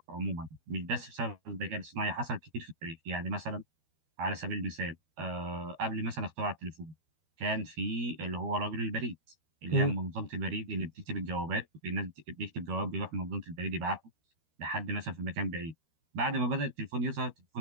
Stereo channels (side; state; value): left; late; 13 ms